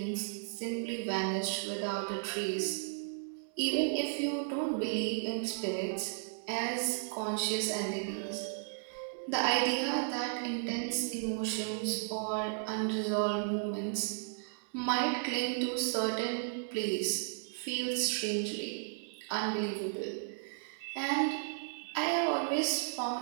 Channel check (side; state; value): left; silent; digital silence